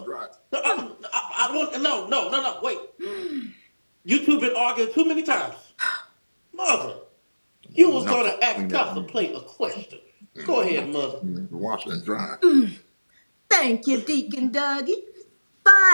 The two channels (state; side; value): inverted; both; correlation -1.00